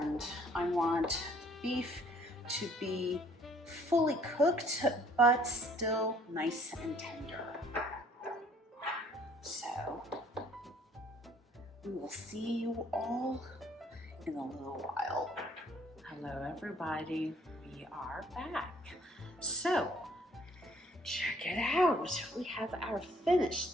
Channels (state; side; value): normal; both; correlation 0.60